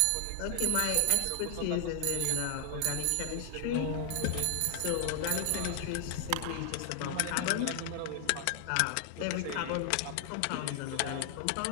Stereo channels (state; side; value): different; both; correlation 0.00